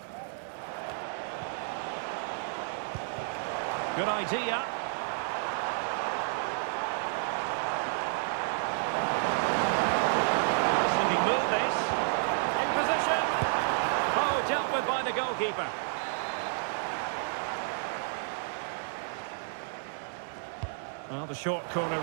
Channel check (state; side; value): silent; left; 57 dB below the other